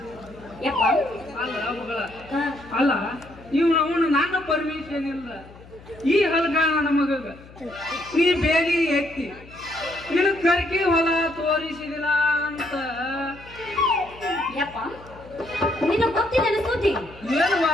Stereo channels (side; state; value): left; noise; hum, 21 dB below the sound